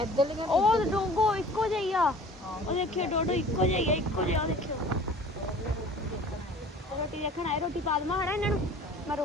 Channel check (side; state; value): both; normal; correlation 0.46